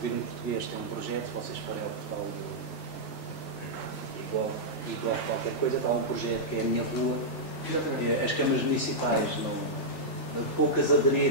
Português tem um projeto, se vocês forem ao portal igual qualquer coisa, está um projeto que é a Minha Rua. As câmaras municipais poucas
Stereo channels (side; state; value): right; late; 3.4 ms